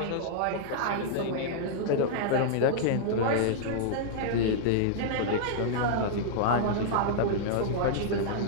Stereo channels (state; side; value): different; both; correlation -0.01